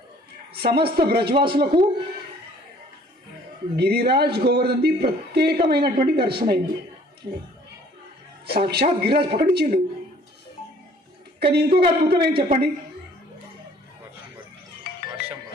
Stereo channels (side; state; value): both; normal; correlation 0.56